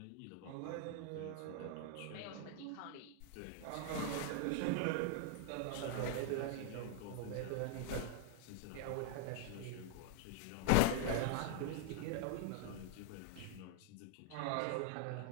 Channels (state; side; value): different; both; correlation 0.00